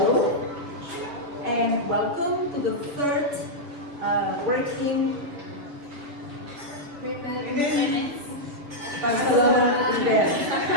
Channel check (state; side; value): late; left; 6.9 ms